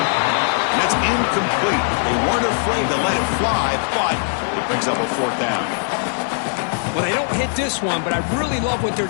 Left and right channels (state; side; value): silent; right; digital silence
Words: And that's incomplete. They weren't afraid to let it fly, but it picks up a fourth down. Well, they don't hit this one, but I really love what they're